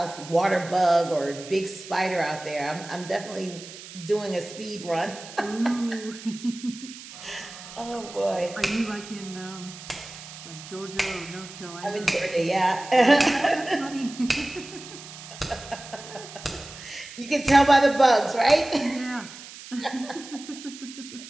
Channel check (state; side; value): noise; right; hiss, 15 dB below the sound